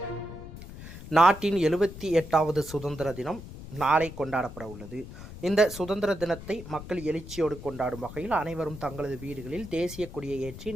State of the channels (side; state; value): left; noise; rumble, 13 dB below the sound